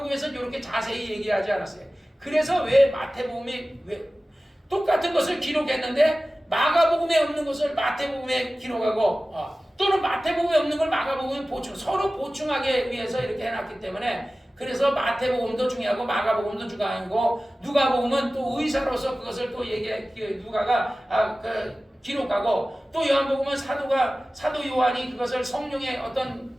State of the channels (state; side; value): normal; both; correlation 0.96